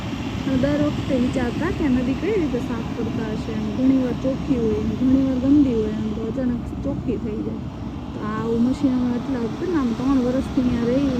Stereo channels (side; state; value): both; identical; correlation 1.00